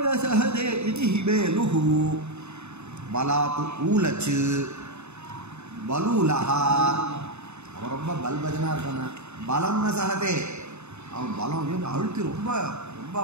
சஹதே இது ஹிமேலு பலாத்து ஊலச்சு பலூலஹா. அவன் ரொம்ப பல்பஜனாக இருக்கான பலம்னு சஹதே அவன் பலம் அழுத்தி ரொம்ப ரொம்ப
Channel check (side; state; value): left; late; 0.81 ms